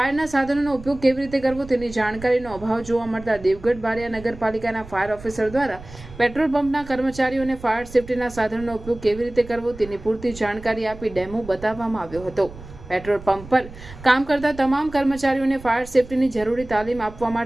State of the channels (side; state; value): right; noise; rumble, 16 dB below the sound